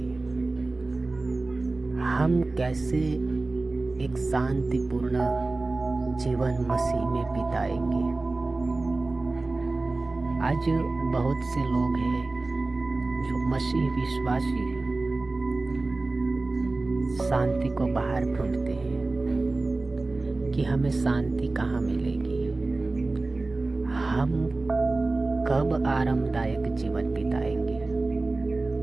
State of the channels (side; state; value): left; quieter; 3.3 dB